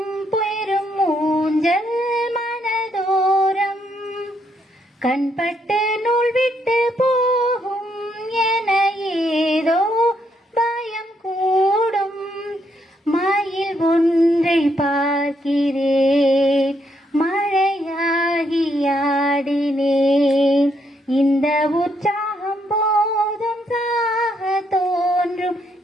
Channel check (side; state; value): both; normal; correlation 0.75